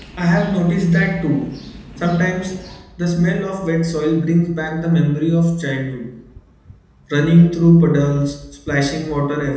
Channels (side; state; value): both; identical; correlation 1.00